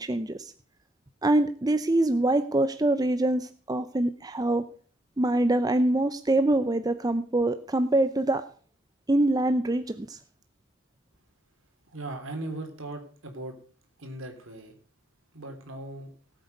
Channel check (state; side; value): normal; both; correlation 0.77